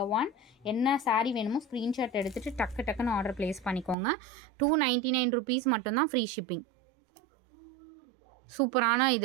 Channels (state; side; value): drops out; left; at 4.0 s